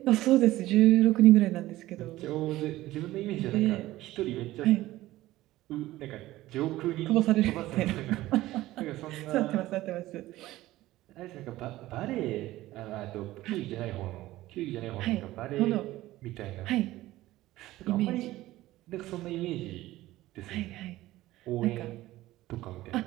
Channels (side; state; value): left; quieter; 16.5 dB